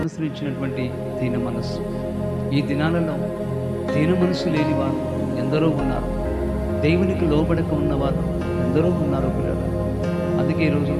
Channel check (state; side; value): identical; both; correlation 1.00